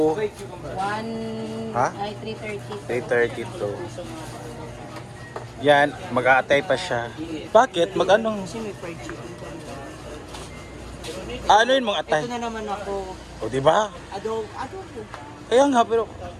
1... Ha? Ay, 330. 332. Yan, mag-aatay pa siya. Bakit? Mag-anong? Kasi may fried chicken. Ano yun mong atay? Ito na naman ako. O, di ba? Adobo. Kaya nga, pero...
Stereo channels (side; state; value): both; identical; correlation 1.00